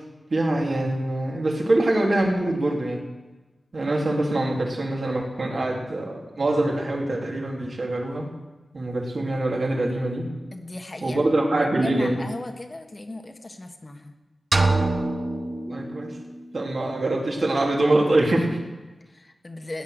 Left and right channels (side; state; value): both; normal; correlation 0.96